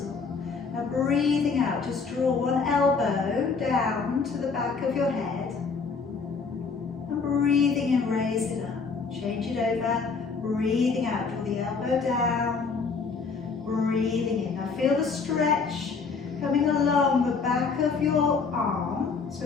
Now breathing out, just draw one elbow down to the back of your head. And breathing in, raise it up. Change it over. Breathing out, draw the elbow down. Breathing in. Now feel the stretch coming along the back of your arm, so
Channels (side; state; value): right; quieter; 4.9 dB